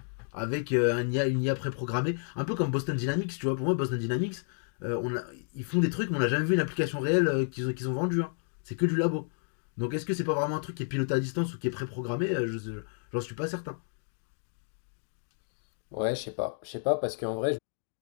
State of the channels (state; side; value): silent; right; digital silence